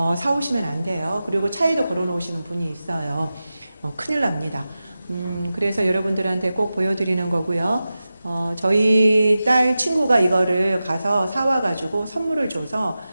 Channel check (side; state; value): both; inverted; correlation -0.94